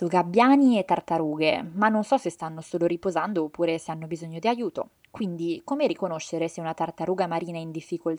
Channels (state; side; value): identical; both; correlation 1.00